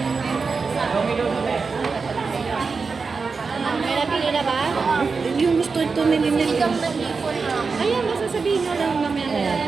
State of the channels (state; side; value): quieter; left; 4.7 dB